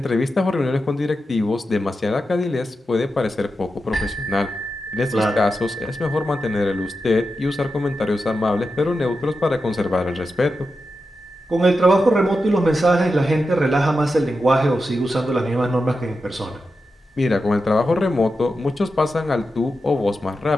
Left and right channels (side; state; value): both; normal; correlation 0.89